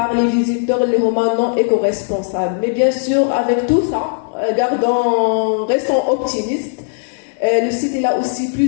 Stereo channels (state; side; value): silent; right; digital silence